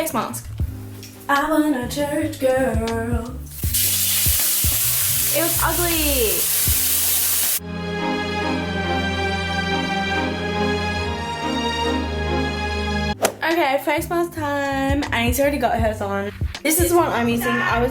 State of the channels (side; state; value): both; identical; correlation 1.00